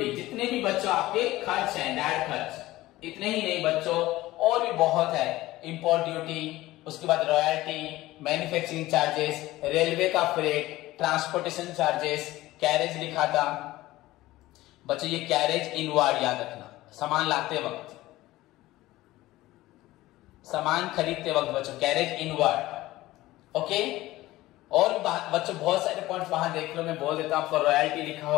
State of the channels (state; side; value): quieter; right; 17.3 dB